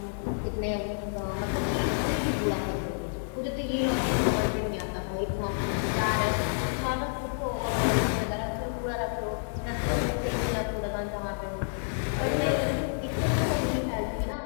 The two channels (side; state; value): right; silent; digital silence